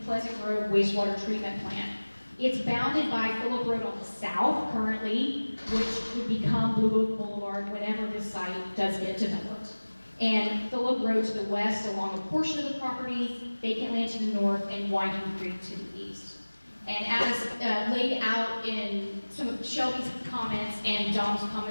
Grove Wastewater Treatment Plant. It's bounded by Phillip Road on the south currently, which would become Blue Oak Boulevard whenever this site does get developed. And Phillip Road to the west along a portion of the property, vacant land to the north, and Winding Creek to the east. And as laid out in some of Shelby's comments and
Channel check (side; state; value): both; inverted; correlation -1.00